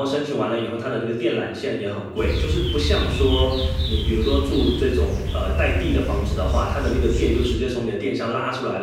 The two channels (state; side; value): identical; both; correlation 1.00